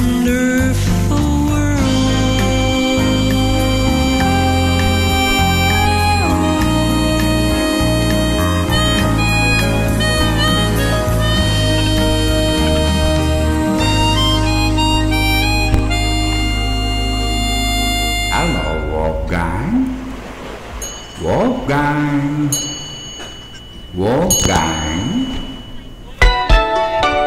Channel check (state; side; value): identical; both; correlation 1.00